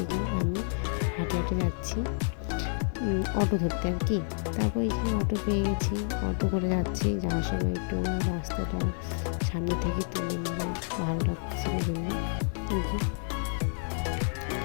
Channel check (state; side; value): silent; right; digital silence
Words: এই যে আমি হাঁটে হাঁটে যাচ্ছি অটো ধরতে আর কি। তারপর এই যে অটো পেয়ে গেছি, অটো করে যাচ্ছি। যাওয়ার সময় একটু রাস্তাটা সামনে থেকে তুলে নিলাম, ভালো লাগতেছিল জন্য। এই যে